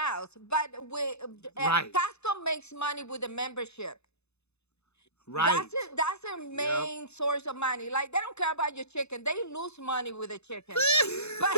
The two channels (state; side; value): late; right; 0.80 ms